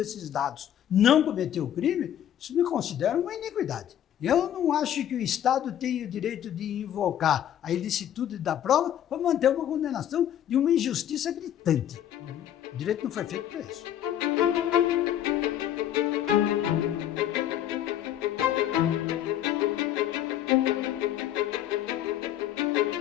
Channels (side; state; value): right; quieter; 10.8 dB